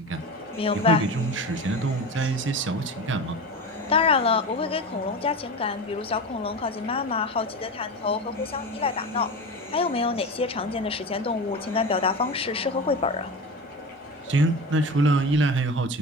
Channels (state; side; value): normal; both; correlation 0.27